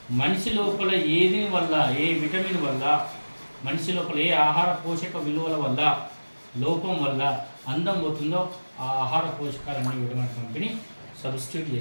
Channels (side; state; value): both; inverted; correlation -1.00